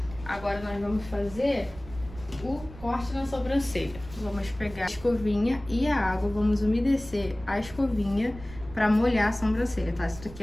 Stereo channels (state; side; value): noise; right; rumble, 16 dB below the sound